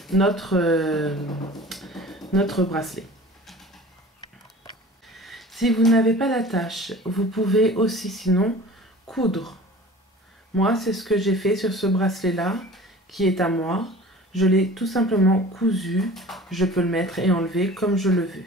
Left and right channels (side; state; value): both; normal; correlation 0.42